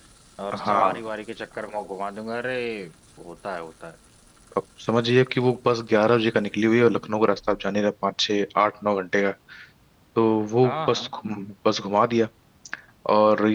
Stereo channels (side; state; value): both; identical; correlation 1.00